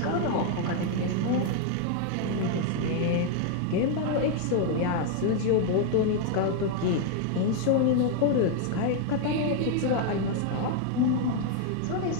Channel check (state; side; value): different; both; correlation 0.00